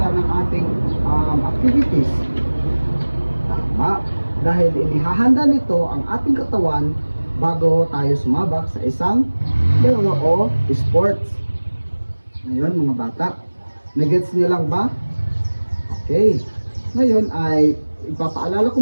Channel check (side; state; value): both; inverted; correlation -1.00